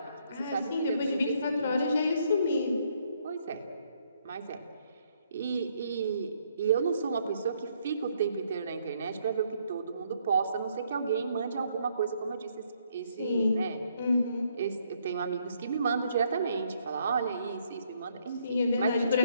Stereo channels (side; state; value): both; inverted; correlation -0.70